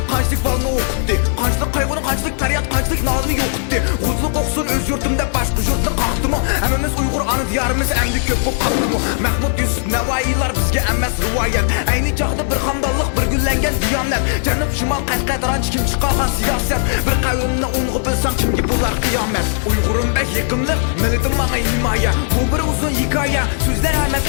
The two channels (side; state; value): right; silent; digital silence